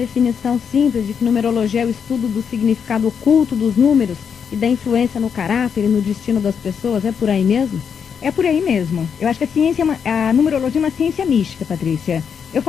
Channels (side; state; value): right; quieter; 7.0 dB